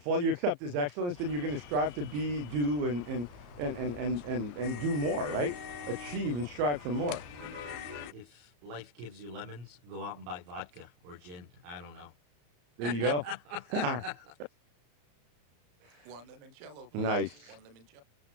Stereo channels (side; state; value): left; late; 34 ms